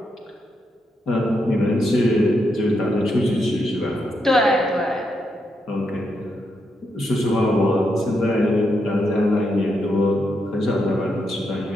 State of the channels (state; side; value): normal; both; correlation 0.81